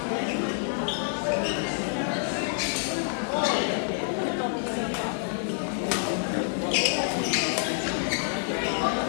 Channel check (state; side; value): silent; right; 60 dB below the other